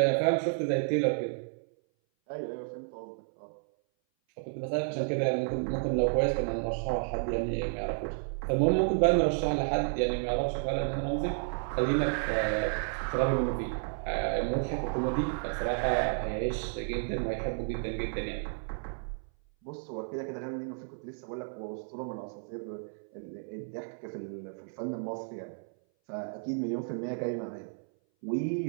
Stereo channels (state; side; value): silent; left; 57 dB below the other